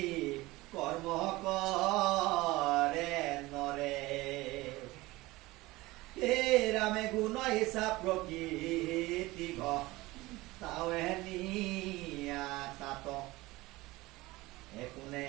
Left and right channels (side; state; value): left; quieter; 20.1 dB